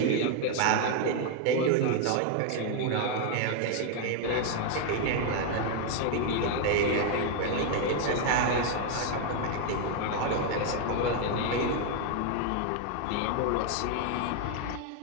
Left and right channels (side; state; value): both; different; correlation 0.00